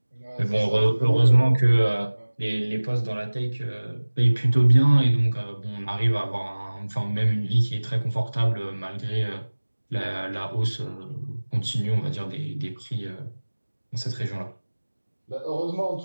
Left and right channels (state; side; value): inverted; both; correlation -1.00